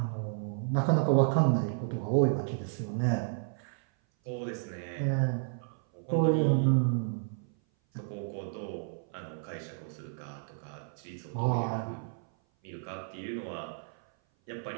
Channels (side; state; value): left; silent; 56 dB below the other